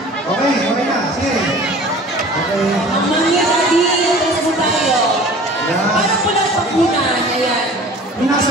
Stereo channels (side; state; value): both; normal; correlation 0.44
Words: Okay, okay na. Sige. Mamangyan natin, atras mo tayo. Parang pulang pakunan, ayan. Yung nasa